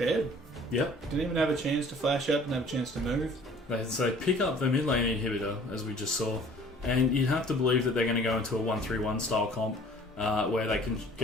Yep. Didn't even have a chance to flash up, didn't have a chance to move. They pick up the mid lane inhibitor, as we just saw, and you'd have to believe that they're going to go into a 1-3-1 style comp where they can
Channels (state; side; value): normal; both; correlation 0.51